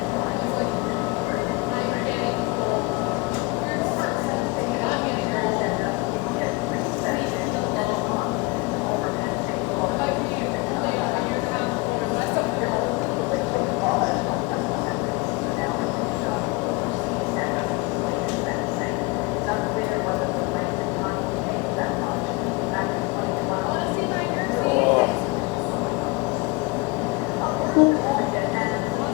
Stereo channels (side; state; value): right; quieter; 24.8 dB